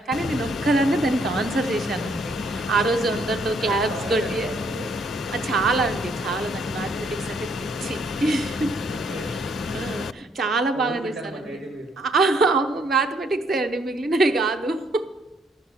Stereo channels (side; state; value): both; normal; correlation 0.69